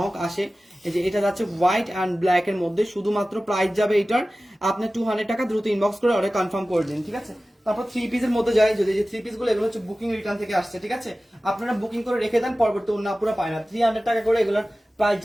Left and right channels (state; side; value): normal; both; correlation 0.96